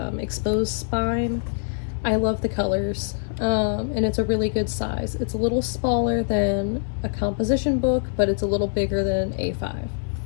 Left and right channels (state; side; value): silent; right; digital silence